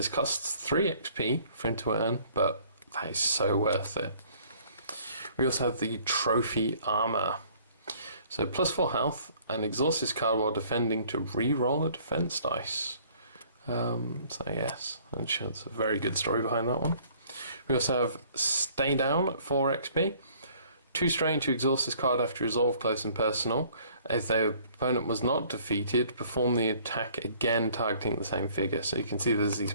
costs 3 XP for him to earn, but that is so worth it. We also have the Trophy Armor. So +4 health, and exhaust this card while defending to re-roll a defense dice. So yes, I'm sure there's a very good story behind that one. We also have Stay Down at 4 XP. 2 strain to exhaust this card after resolve close and personal. If their opponent was not defeated, perform the attack again targeting the same figure. So you can see there's these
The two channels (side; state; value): both; inverted; correlation -0.57